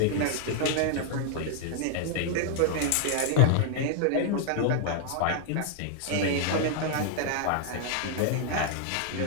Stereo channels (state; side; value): different; both; correlation 0.00